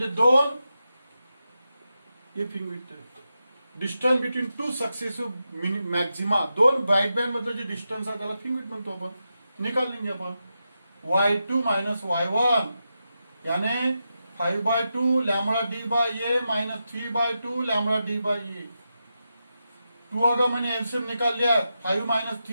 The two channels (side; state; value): both; inverted; correlation -0.88